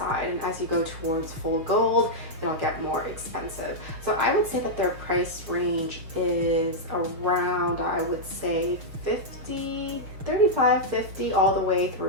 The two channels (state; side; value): late; left; 6.4 ms